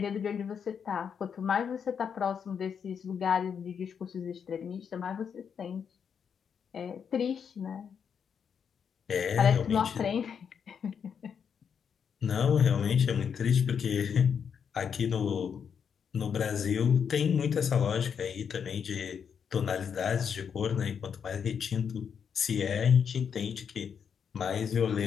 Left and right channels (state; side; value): quieter; right; 7.2 dB